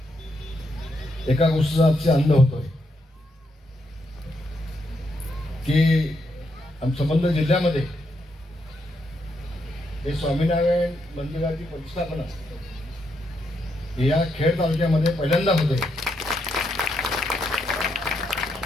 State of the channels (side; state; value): both; normal; correlation 0.79